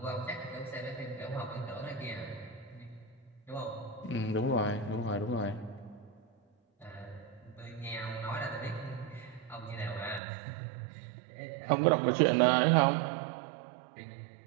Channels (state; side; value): drops out; left; at 10.2 s